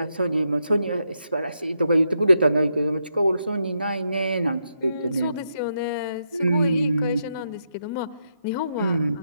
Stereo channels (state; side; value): inverted; both; correlation -0.81